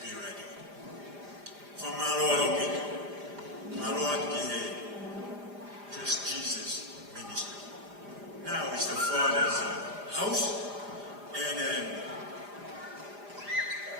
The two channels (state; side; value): late; left; 5.0 ms